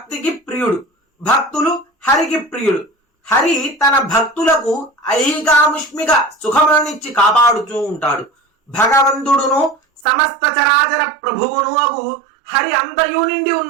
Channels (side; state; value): left; drops out; at 10.1 s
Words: ప్రియుడు, భక్తులు హరికి ప్రియుడు. హరి తన భక్తులకు ఐహికాముష్మిక సుఖములనిచ్చి కాపాడుతూ ఉంటాడు. భగవంతుడును సమస్త చరాచర ప్రభువును అగు హరి అంతయు నిండి